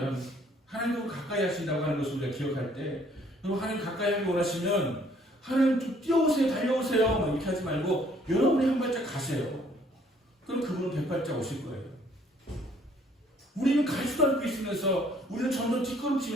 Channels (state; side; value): normal; both; correlation 0.62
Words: 하나님을 가까이 하신다고 하는 것을 우리가 기억할 때 여러분 하나님 가까이 하기 원하시면 하나님 좀 뛰어오세요 달려오세요 이렇게 하지 말고 여러분이 한 발짝 가세요. 그럼 그분은 100발짝 오실 거예요. 우리는 가지도 않고 있으면서 우리는 점점